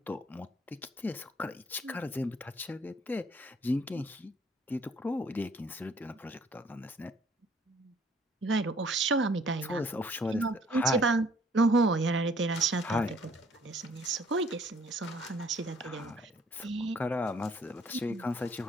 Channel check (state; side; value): normal; both; correlation 0.60